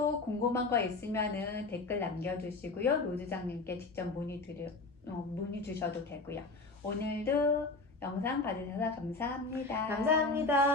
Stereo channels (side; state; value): right; quieter; 3.6 dB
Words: 궁금한 거 있으면은 댓글 남겨주시고요. 로드장님께 직접 문의 주셔도 되고요. 오늘도 영상 봐주셔서 감사합니다.